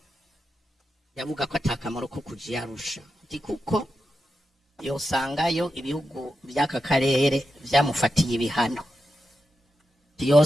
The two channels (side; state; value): both; normal; correlation 0.88